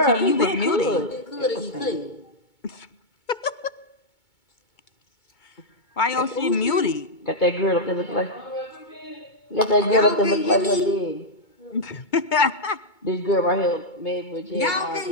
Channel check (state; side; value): late; right; 2.2 ms